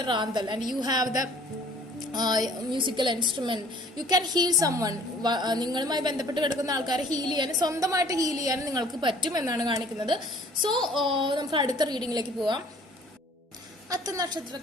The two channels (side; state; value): both; normal; correlation 0.53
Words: റാന്തൽ and you have the musical instrument. You can heal summon. നിങ്ങളുമായി ബന്ധപ്പെട്ട് കിടക്കുന്ന ആൾക്കാരെ ഹീൽ ചെയ്യാനും സ്വന്തമായിട്ട് ഹീൽ ചെയ്യാനും നിങ്ങൾക്ക് പറ്റും എന്നാണ് കാണിക്കുന്നത്. സോ നമുക്ക് അടുത്ത റീഡിങ്ങിലേക്ക് പോവാം. അത്ത